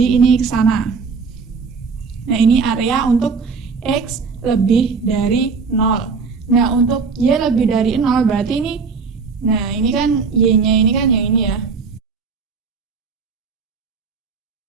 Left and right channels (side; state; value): left; quieter; 5.1 dB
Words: ini ke sana. Nah, ini area untuk X lebih dari 0. Nah, untuk Y lebih dari 0 berarti ini, nah ini kan Y-nya ini kan yang ini ya.